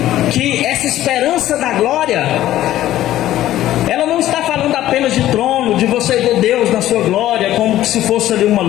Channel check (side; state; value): right; quieter; 13.8 dB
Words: que essa esperança da glória, ela não está falando apenas de trono, de você ver Deus na sua glória, como se fosse ali uma